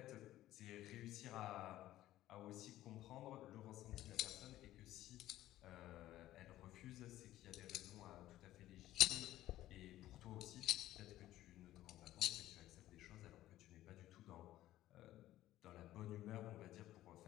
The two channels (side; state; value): right; quieter; 14.4 dB